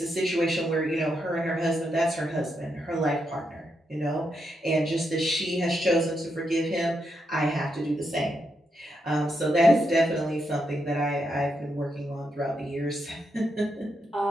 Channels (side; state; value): both; normal; correlation 0.82